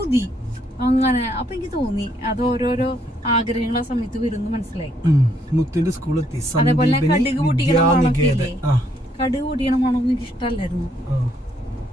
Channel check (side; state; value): both; normal; correlation 0.70